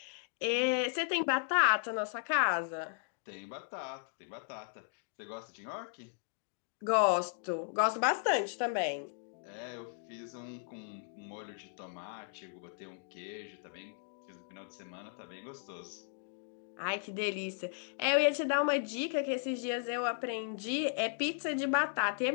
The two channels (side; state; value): right; silent; digital silence